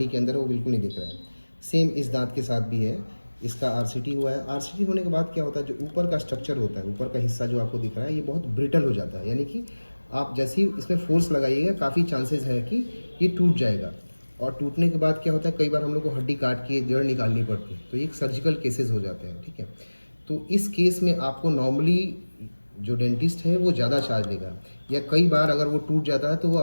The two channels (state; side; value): inverted; both; correlation -1.00